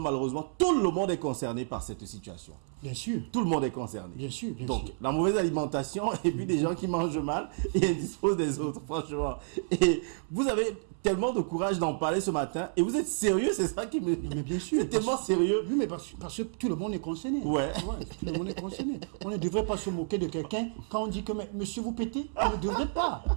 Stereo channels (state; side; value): silent; left; 58 dB below the other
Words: malheureusement, tout le monde est concerné par cette situation. Bien sûr. Tout le monde est concerné. Bien sûr, bien Donc, sûr. la mauvaise alimentation et puis des gens qui mangent mal et indisposent des autres, franchement. Et vous avez tellement de courage d'en parler ce matin et vous êtes sérieux, c'est ça qui me... Non, mais bien sûr. C'est tellement sérieux. Oui, mais parce que tout le monde est concerné. Ouais. Tout le monde est concerné. On ne devrait pas se moquer de quelqu'un quand on dit que monsieur vous pétez. On ne devrait pas.